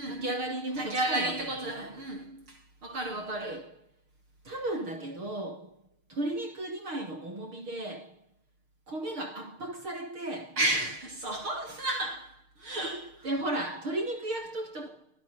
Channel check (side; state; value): left; late; 6.5 ms